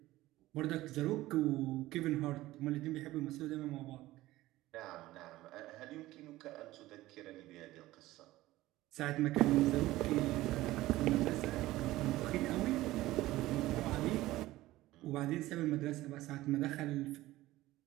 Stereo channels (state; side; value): quieter; left; 17.0 dB